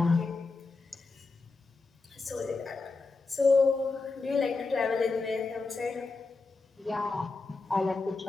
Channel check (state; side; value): quieter; right; 3.8 dB